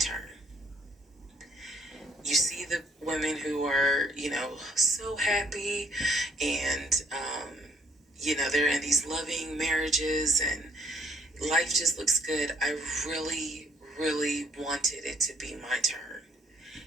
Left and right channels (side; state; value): both; normal; correlation 0.65